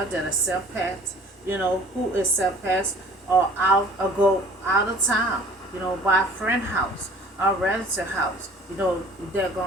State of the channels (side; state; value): both; normal; correlation 0.50